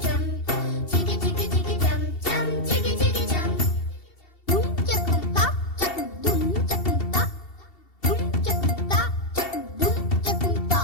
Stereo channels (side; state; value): right; late; 2.7 ms